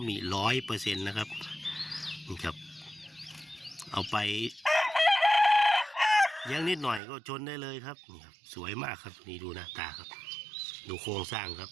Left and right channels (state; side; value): drops out; left; at 7.0 s